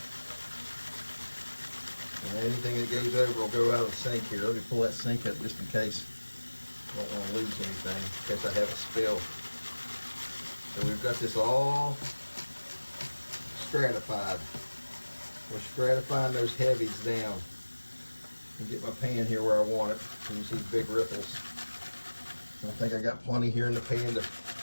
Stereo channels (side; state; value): both; inverted; correlation -1.00